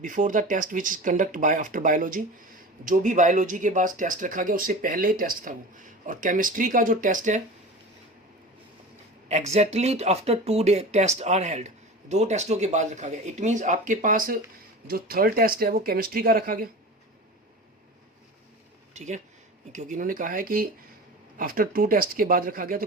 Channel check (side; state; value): both; normal; correlation 0.33